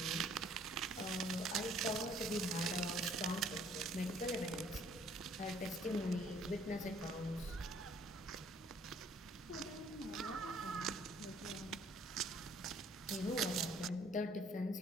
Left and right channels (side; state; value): both; normal; correlation 0.60